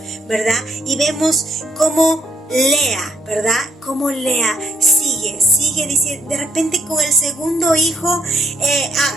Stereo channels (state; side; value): normal; both; correlation 0.73